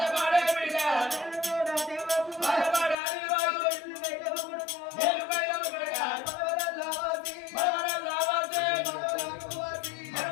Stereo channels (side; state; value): right; drops out; at 3.0 s